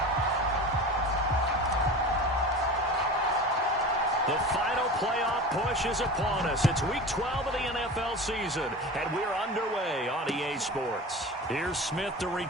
The final playoff push is upon us. It's Week 12 of the NFL season, and we're underway on EA Sports. Here's Smith to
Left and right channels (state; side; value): normal; both; correlation 0.33